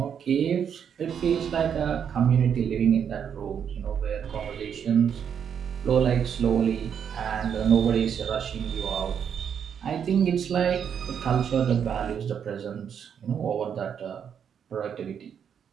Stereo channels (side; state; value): left; quieter; 7.9 dB